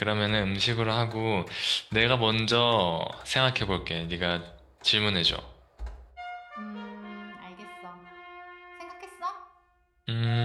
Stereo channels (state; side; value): identical; both; correlation 1.00